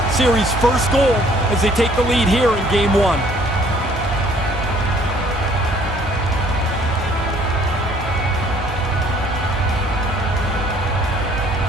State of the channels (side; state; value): both; normal; correlation 0.59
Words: series' first goal as they take the lead here in Game 1.